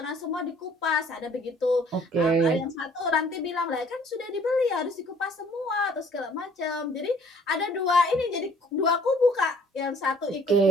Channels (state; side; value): normal; both; correlation 0.57